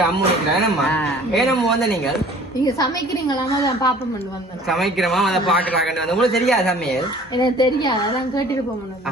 அம்மு நிக்கிறோம் ஏனம்மா வந்து நீங்க சமைக்கிறீங்களாமா பாப்பம் சமைக்கிறோமா அதை பாக்குறாங்க வந்து உங்களுக்கு தெரியாது சமையல் எனக்கு தெரியாது அதான் கேட்டுட்டு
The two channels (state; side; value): normal; both; correlation 0.50